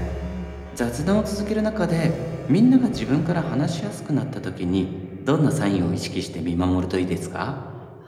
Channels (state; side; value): identical; both; correlation 1.00